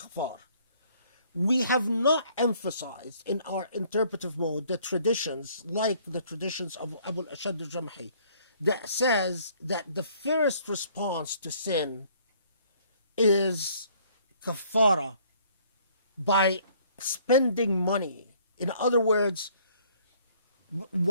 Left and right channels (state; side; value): inverted; both; correlation -0.60